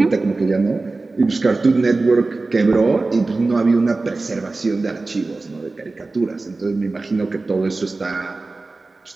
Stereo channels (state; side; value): quieter; left; 3.5 dB